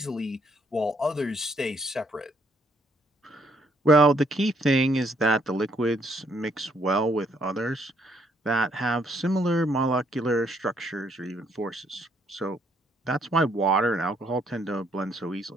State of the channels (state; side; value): normal; both; correlation 0.69